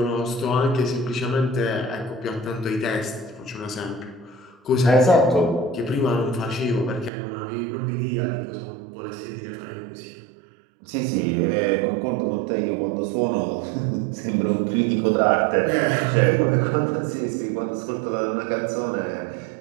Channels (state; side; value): drops out; left; at 7.1 s